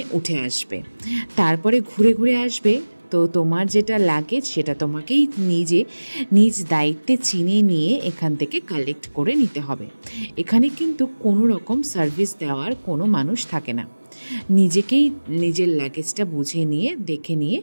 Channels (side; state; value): both; inverted; correlation -1.00